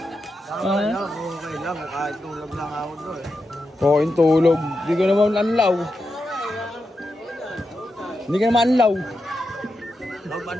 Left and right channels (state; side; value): normal; both; correlation 0.88